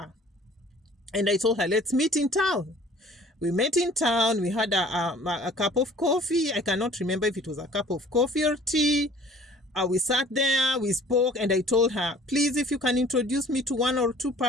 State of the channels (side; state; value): both; normal; correlation 0.51